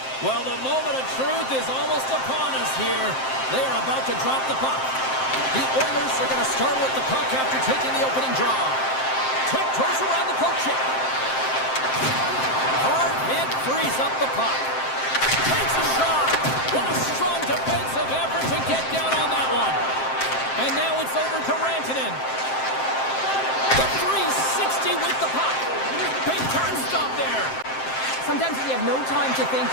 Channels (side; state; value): right; late; 7.6 ms